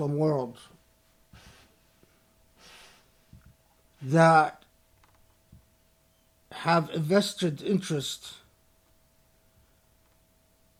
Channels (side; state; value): both; identical; correlation 1.00